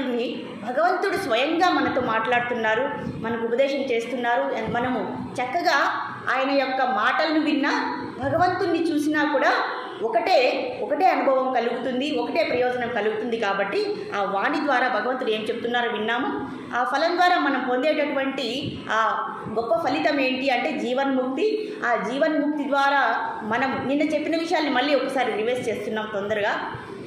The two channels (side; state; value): both; identical; correlation 1.00